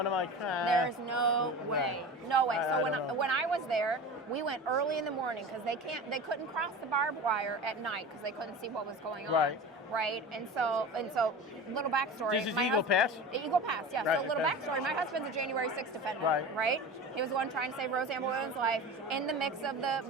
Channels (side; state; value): both; normal; correlation 0.32